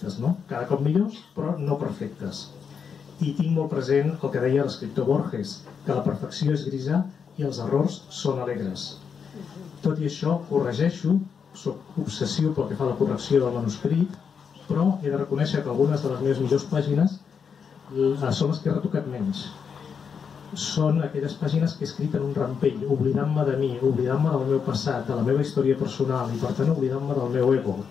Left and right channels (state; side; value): quieter; right; 6.5 dB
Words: no? Cada cop millors però no perfectes. I tinc molt present el que deia l'escriptor Borges, que la perfecció és grisa i els errors són alegres. Tot i això corregeixo, soc obsessiu pel que fa a la correcció del manuscrit, però he de reconèixer que algunes de les meves millors pàgines són les que he retocat menys. Són aquelles pàgines que he escrit en un rampell, oblidant-me de mi, oblidant-me del meu passat, de la meva història personal i per tant oblidant-me del meu ego,